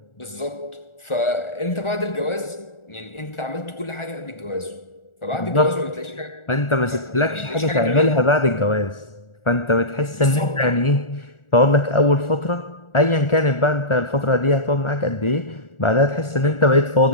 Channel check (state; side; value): late; right; 1.4 ms